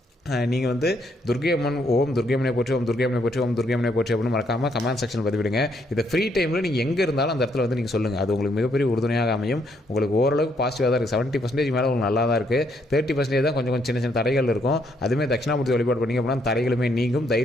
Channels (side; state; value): both; normal; correlation 0.72